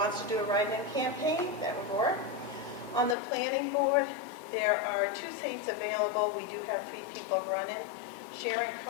to do a write-in campaign, that would work. On the planning board, there are 2 seats available. We do have 3 people running: Sharon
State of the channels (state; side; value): drops out; right; at 3.2 s